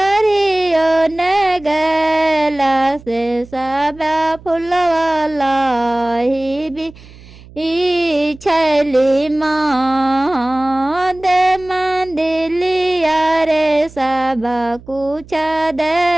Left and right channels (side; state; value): right; noise; hum, 21 dB below the sound